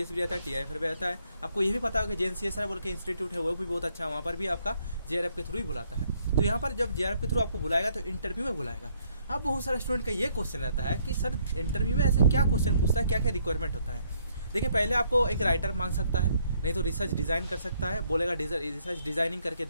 भी रहता है, टीआईएफआर भी रहता है। आपको ये भी पता होगा कि JNCSR बोल के इंस्टीट्यूट है, वो भी बहुत अच्छा है, वहाँ पर भी आपका जेआरएफ के थ्रू ही बुलाता है। तो यहाँ पर जब जेआरएफ के थ्रू आपको बुलाएगा तो इंटरव्यू में बुलाएगा। अब बहुत सारे स्टूडेंट का ये क्वेश्चन रहता है कि सर इंटरव्यू में ऐसे क्या क्वेश्चन पूछता है, क्या क्या रिक्वायरमेंट होता है। देखिए, पहले आपको एक राइटर मांग सकता है, नहीं तो रिसर्च डिज़ाइन कर सकता है, बोलेगा रिसर्च डिज़ाइनिंग करके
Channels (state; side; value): inverted; both; correlation -0.68